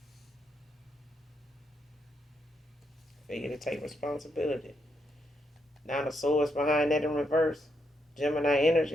Figure to take responsibility. Now the swords behind that in reverse. Gemini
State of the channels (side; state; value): both; normal; correlation 0.79